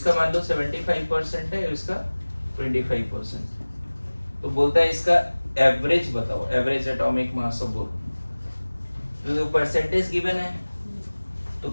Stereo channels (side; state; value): both; inverted; correlation -1.00